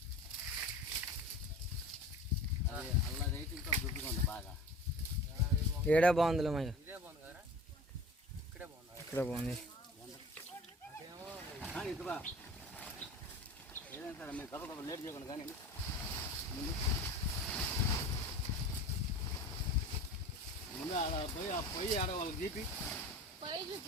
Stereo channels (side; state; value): both; normal; correlation 0.38